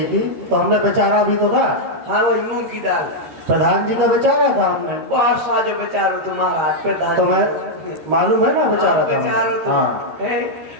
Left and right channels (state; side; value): late; left; 13 ms